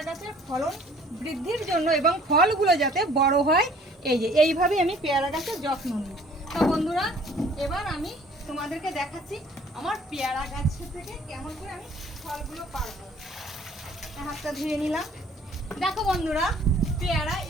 গাছের ফলন বৃদ্ধির জন্য এবং ফলগুলো যাতে বড় হয়, এই যে এইভাবে আমি পেয়ারা গাছের যত্ন নিই। তো বন্ধুরা, এবার আমি তোমাদেরকে দেখাচ্ছি আমার পেয়ারা গাছ থেকে কেমন করে আমি ফলগুলো পারবো। হাতটা ধুয়ে নিলাম। দেখো বন্ধুরা, পেয়ারা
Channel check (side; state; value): both; normal; correlation 0.55